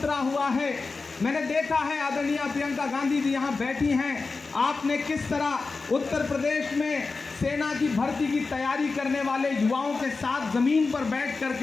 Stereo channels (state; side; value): quieter; right; 4.1 dB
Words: हुआ है। मैंने देखा है, आदरणीय प्रियंका गांधी जी यहाँ बैठी हैं। आपने किस तरह उत्तर प्रदेश में सेना की भर्ती की तैयारी करने वाले युवाओं के साथ जमीन पर बैठ